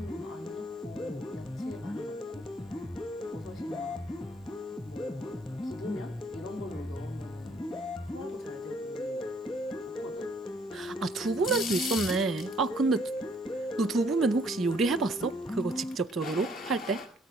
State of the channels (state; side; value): normal; both; correlation 0.65